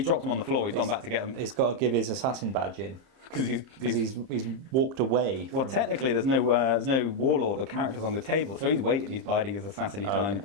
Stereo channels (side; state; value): left; late; 30 ms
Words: them on the floor. He's gone back to get them. He's got to give his assassin badge in Because he's walked away. well, technically, there's no warlord or characters on the table, so he's waiting. He's biding his assassin time. Okay.